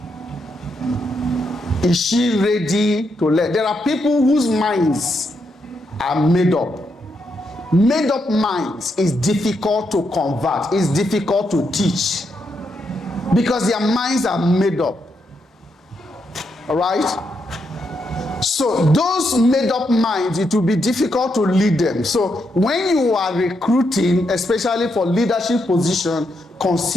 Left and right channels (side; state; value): both; normal; correlation 0.81